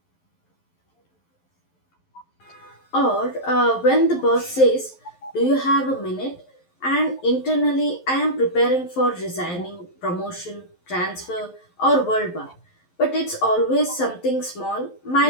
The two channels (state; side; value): late; right; 11 ms